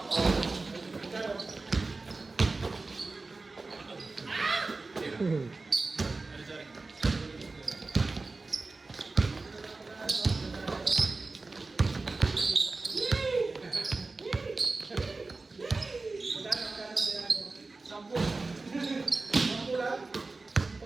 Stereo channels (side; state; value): left; quieter; 3.6 dB